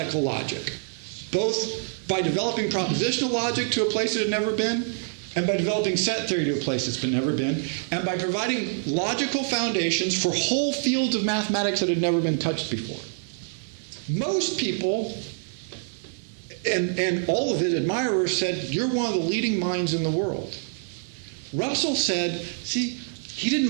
logic, both by developing propositional logic to a place it had never been, and by developing set theory to a place it's never been, and by providing logical foundations for whole fields of mathematics that had never been touched before. Most people, and all of his admirers, said, you're one of the leading minds in the world. Russell said, see, he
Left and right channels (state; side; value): silent; left; 61 dB below the other